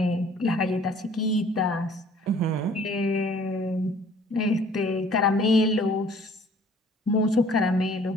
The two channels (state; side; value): normal; both; correlation 0.55